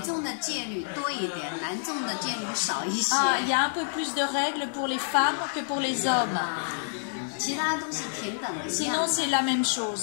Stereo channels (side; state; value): right; silent; digital silence